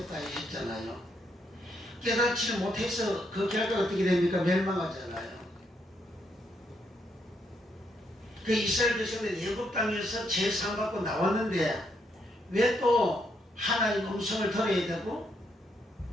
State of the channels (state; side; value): normal; both; correlation 0.76